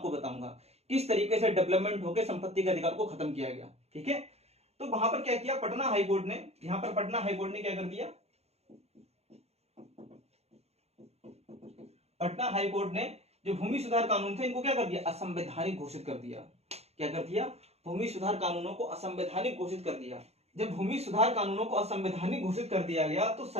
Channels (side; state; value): left; late; 0.30 ms